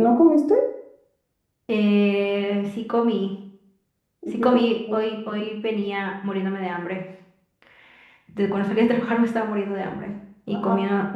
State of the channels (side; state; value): both; identical; correlation 1.00